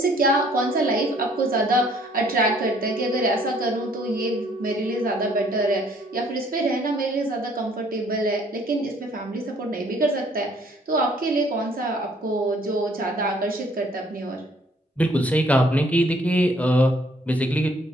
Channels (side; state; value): both; normal; correlation 0.61